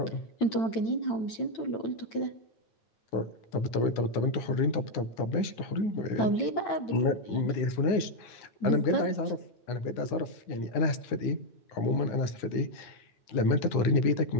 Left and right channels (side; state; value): right; late; 9.6 ms